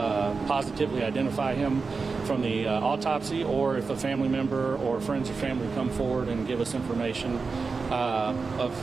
positively identify him from the autopsy, or if a family member or friends or family come forward and give us information of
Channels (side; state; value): left; quieter; 4.6 dB